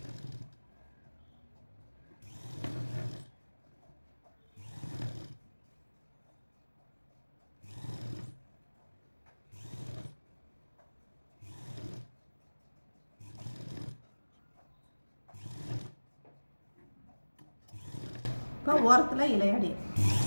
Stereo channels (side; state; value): both; inverted; correlation -1.00